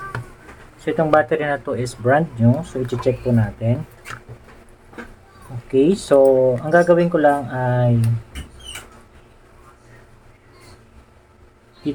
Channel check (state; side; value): identical; both; correlation 1.00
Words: So, itong battery na to is brand new. So, i-check po natin. Okay. So, ang gagawin ko lang ay